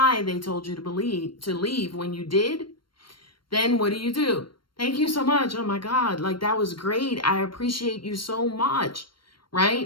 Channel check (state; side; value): late; right; 0.72 ms